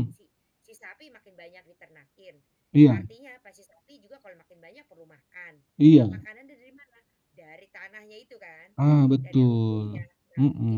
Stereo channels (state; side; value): identical; both; correlation 1.00